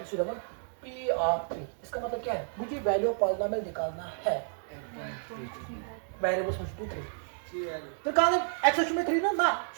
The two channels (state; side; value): silent; left; digital silence